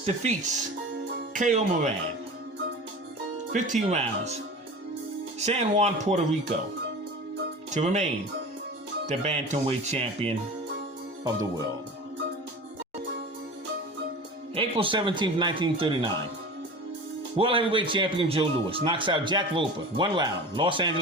defeats K.O. Moran. 15 rounds. San Juan, Puerto Rico, to remain the bantamweight champion of the world. April 17, 1939. World heavyweight champion Joe Louis knocks out Jack Roper, 1 round, Los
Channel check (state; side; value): normal; both; correlation 0.35